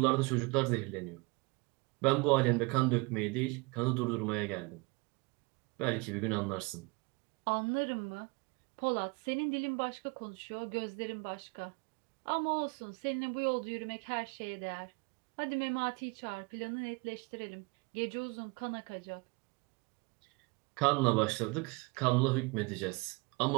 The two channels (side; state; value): left; quieter; 27.4 dB